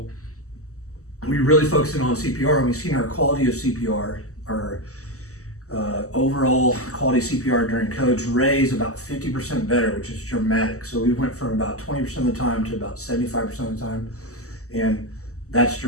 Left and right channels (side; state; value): right; late; 0.65 ms